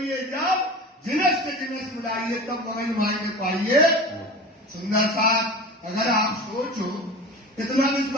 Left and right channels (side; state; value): both; normal; correlation 0.34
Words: जब जिनस से जिनस मिलाइए तब वही मायने पाइए। सुंदर साथ अगर आप सोचो, इतना